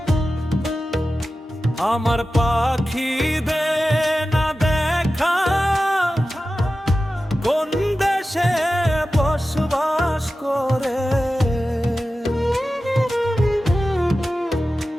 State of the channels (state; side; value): normal; both; correlation 0.94